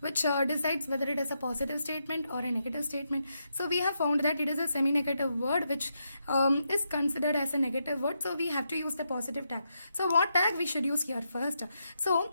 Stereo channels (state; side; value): inverted; both; correlation -0.82